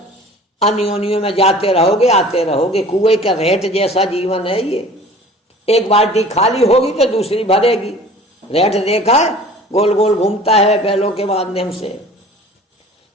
अन्योन्यों में जाते रहोगे, आते रहोगे। कुएं का रेट जैसा जीवन है ये। एक बाल्टी खाली होगी तो दूसरी भरेगी। रेट देखा है, गोल गोल घूमता है बैलों के माध्यम से।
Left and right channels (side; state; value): both; normal; correlation 0.45